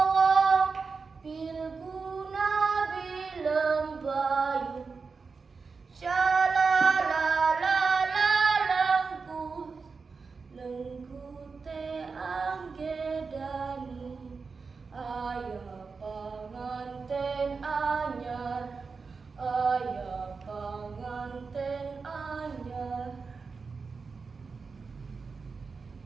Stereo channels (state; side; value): quieter; left; 4.8 dB